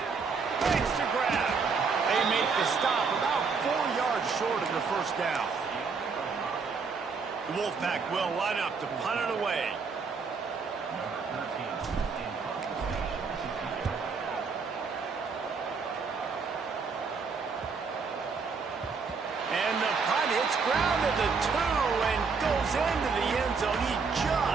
Thanks to grab. They make the stop about 4 yards short of the 1st down. The Wolfpack will line up to punt it away. And the punt hits ground at the 2 and goes into the end zone. He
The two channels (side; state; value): left; quieter; 5.1 dB